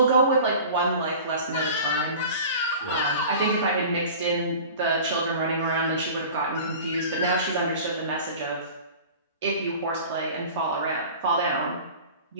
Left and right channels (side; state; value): both; inverted; correlation -0.40